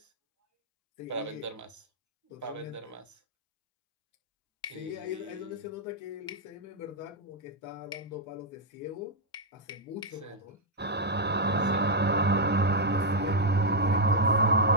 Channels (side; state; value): both; normal; correlation -0.02